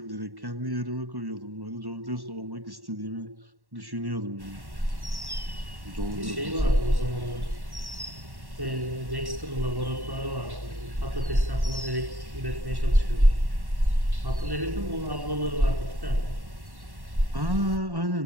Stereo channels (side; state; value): left; late; 1.1 ms